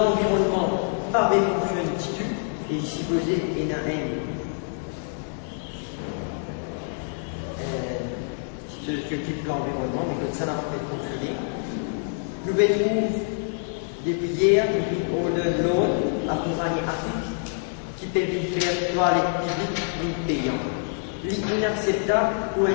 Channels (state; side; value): silent; right; 61 dB below the other